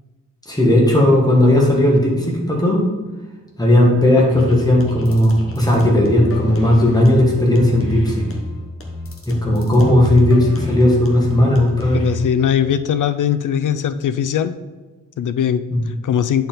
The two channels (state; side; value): normal; both; correlation 0.70